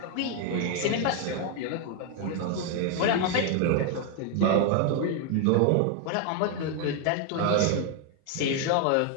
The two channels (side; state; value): both; different; correlation 0.01